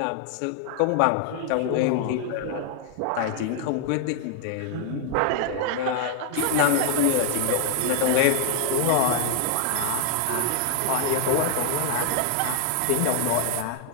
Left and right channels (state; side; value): different; both; correlation 0.00